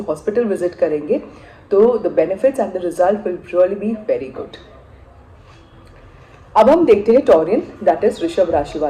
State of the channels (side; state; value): both; identical; correlation 1.00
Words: विजिट करेंगे तो the benefits and the result will really be very good. अब हम देखते हैं टॉरियन दैट इज वृषभ राशि